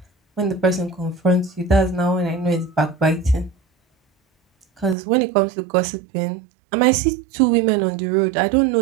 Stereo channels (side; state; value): left; drops out; at 5.0 s